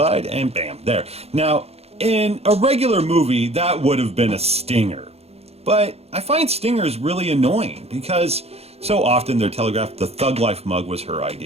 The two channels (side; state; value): left; late; 0.30 ms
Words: and bam, there. Now, in a regular movie, that would have been a stinger. But I find stingers really annoying because so often they're telegraphed. The Thug Life mug was her